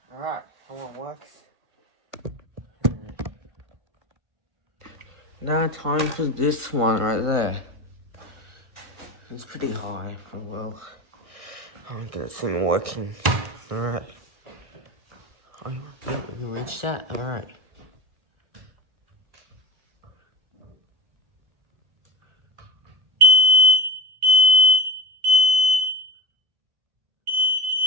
Alright, how it works. Now time for this one right there. It's pretty high for well. I'll get it soon working. Alright. Oh, you reached that? Alright.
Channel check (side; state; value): left; late; 1.4 ms